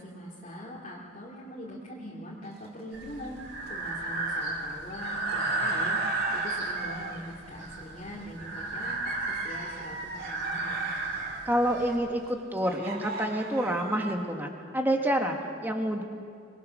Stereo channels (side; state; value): both; normal; correlation 0.46